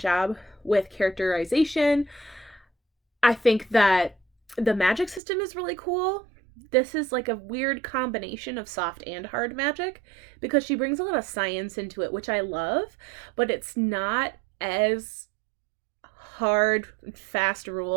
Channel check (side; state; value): left; drops out; at 5.2 s